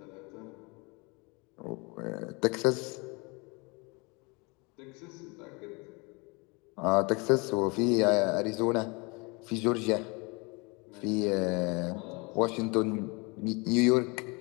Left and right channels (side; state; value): right; quieter; 28.5 dB